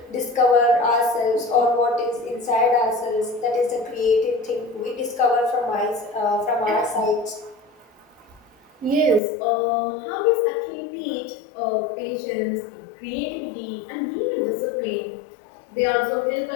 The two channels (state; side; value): drops out; right; at 9.2 s